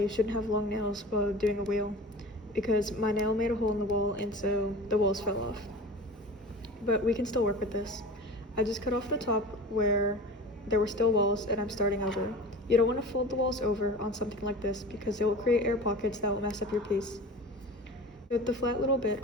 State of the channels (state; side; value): normal; both; correlation 0.36